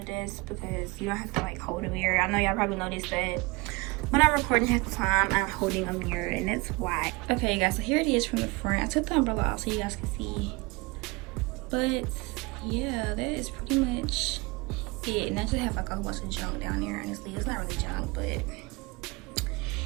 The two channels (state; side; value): quieter; left; 25.4 dB